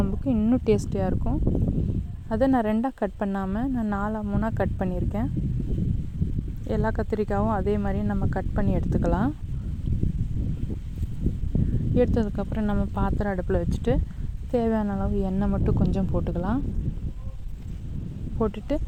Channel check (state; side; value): identical; both; correlation 1.00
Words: இன்னும் டேஸ்டியாக இருக்கும். அதை நான் 2ஆக கட் பண்ணாமல் நான் 4 3 கட் பண்ணியிருக்கேன். எல்லா கத்திரிக்காயும் அதே மாதிரி நம்ம கட் பண்ணி எடுத்துக்கலாம். எடுத்ததுக்கப்புறம் நம்ம பாத்திரம் அடுப்பில் வச்சுட்டு தேவையான அளவு எண்ணெய் மட்டும் கொஞ்சம் போட்டுக்கலாம். போட்டுட்டு